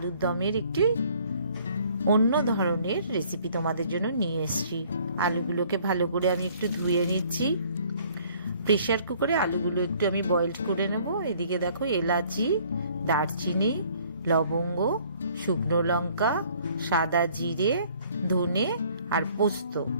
দমের একটি অন্য ধরনের রেসিপি তোমাদের জন্য নিয়ে এসেছি। আলুগুলোকে ভালো করে আমি একটু ধুয়ে নিচ্ছি। প্রেশার কুকারে আলুগুলো একটু আমি বয়েলড করে নেব। এদিকে দেখো এলাচি, দারচিনি, লবঙ্গ, শুকনো লঙ্কা, সাদা জিরে, ধনে আর পোস্ত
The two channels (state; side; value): inverted; both; correlation -0.58